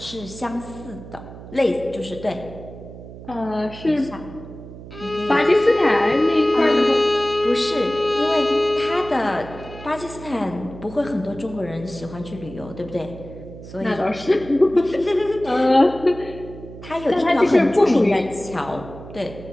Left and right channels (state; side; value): noise; right; hum, 15 dB below the sound